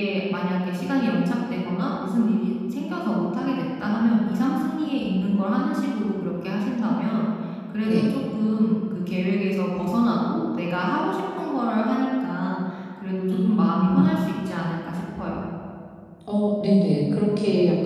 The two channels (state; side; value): identical; both; correlation 1.00